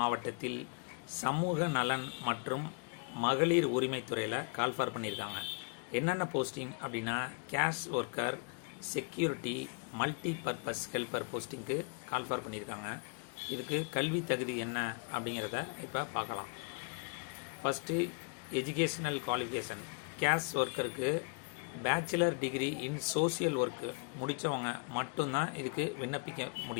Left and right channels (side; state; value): right; quieter; 36.8 dB